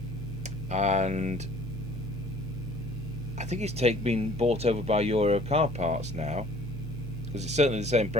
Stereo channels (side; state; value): both; normal; correlation 0.53